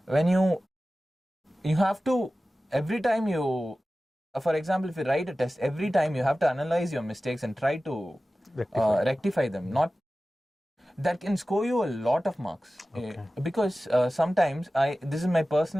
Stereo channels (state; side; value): normal; both; correlation 0.96